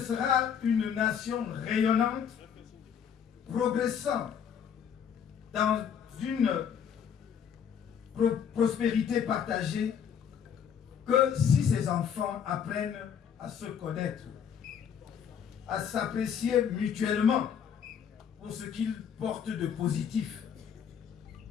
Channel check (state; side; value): quieter; right; 7.9 dB